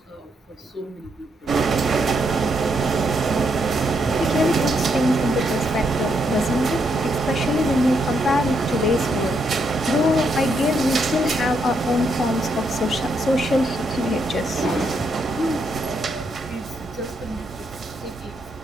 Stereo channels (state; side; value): normal; both; correlation 0.77